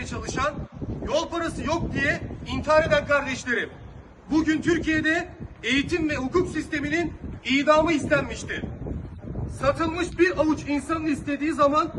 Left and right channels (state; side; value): identical; both; correlation 1.00